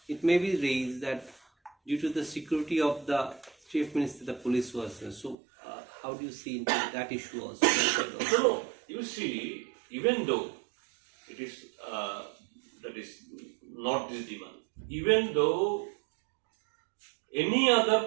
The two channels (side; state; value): left; drops out; at 5.4 s